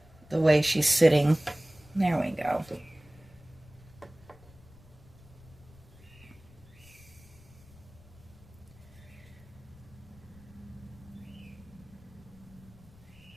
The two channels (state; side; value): noise; left; rumble, 23 dB below the sound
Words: way she's sitting. There we go.